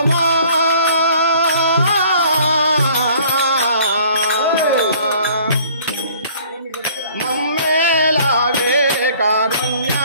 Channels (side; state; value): both; inverted; correlation -0.54